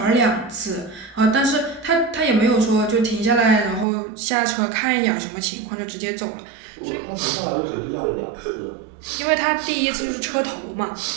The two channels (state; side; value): drops out; left; at 3.9 s